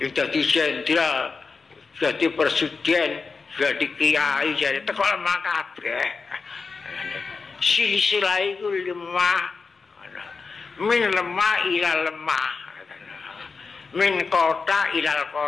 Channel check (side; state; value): right; quieter; 4.6 dB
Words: Dadi jenderal, jadi presiden, jadi kiai, jadi teko lemah kabeh. Silsilah iku lemah. Min lemah ila lemah. Min kota ilal